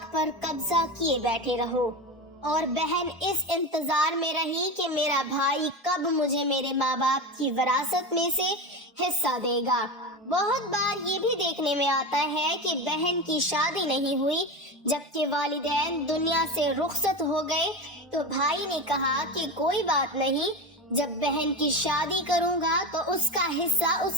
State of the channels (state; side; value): normal; both; correlation 0.22